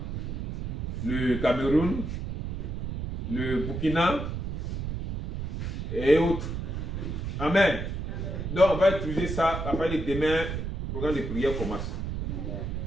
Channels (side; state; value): right; noise; rumble, 4 dB below the sound